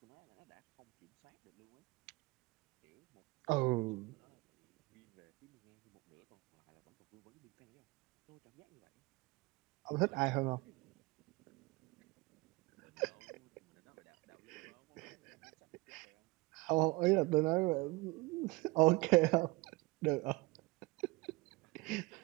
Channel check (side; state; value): left; quieter; 23.7 dB